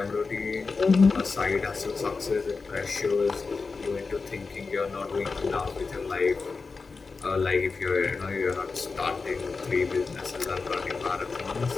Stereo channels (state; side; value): quieter; right; 4.4 dB